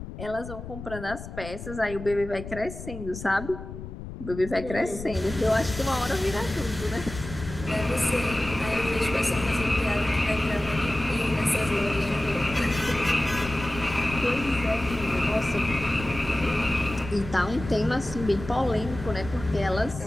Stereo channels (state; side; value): noise; left; rumble, 10 dB below the sound